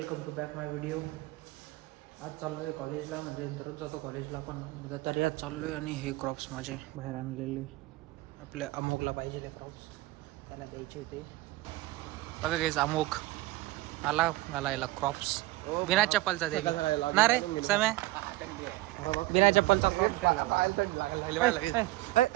to back my video. आज चाललो आहे कॉलेजला, म्हणजे दररोज जातो कॉलेजला पण तरी आज चाललो आहे. आणि हे क्रॉप्स माझे बाहेर आणलेले आपल्या अमोकला पाहिजे ते क्रॉप्स त्याला द्यायचे होते. बघा गाईज अमोक आला घालायला क्रॉप्स बिना चप्पलचा दे ना रे समय बिना चप्पलचा क्रॉप्स घालायला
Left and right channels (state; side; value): quieter; left; 19.1 dB